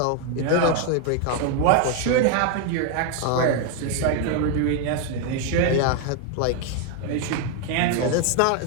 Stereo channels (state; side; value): different; both; correlation 0.01